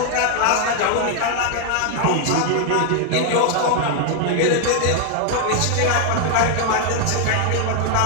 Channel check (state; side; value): different; both; correlation 0.00